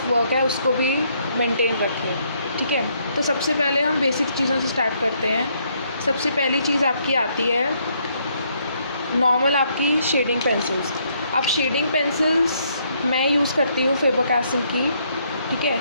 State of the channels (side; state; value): both; inverted; correlation -0.71